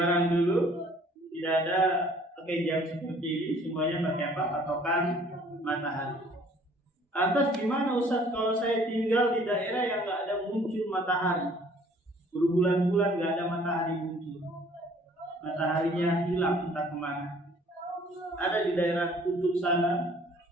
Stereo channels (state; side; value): normal; both; correlation 0.56